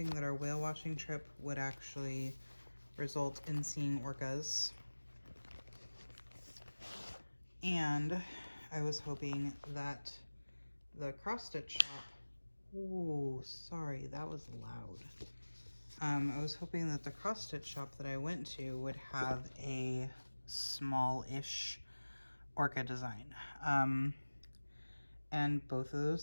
that our whale watching trip would actually result in seeing orcas. And I was hoping that the cross-stitch shop, ooh, sorry, that was loud. I was hoping that the cross-stitch shop that I went to would have a small-ish orca design. And both of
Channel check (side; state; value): both; inverted; correlation -1.00